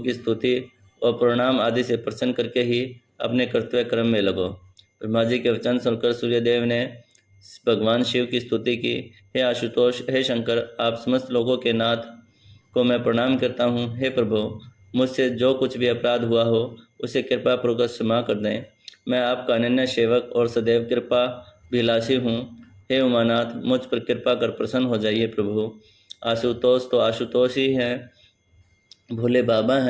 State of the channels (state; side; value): identical; both; correlation 1.00